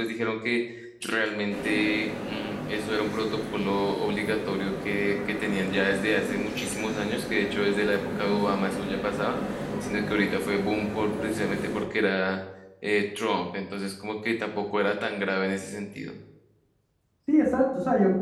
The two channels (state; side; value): identical; both; correlation 1.00